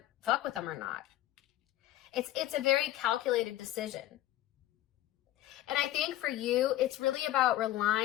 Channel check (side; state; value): right; quieter; 14.2 dB